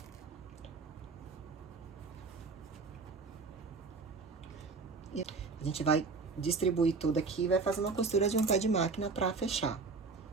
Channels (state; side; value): quieter; left; 4.4 dB